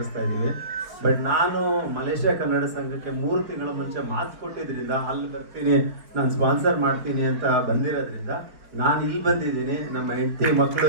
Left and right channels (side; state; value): left; late; 4.6 ms